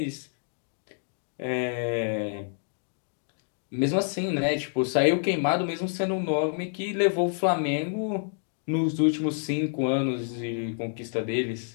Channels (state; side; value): silent; right; digital silence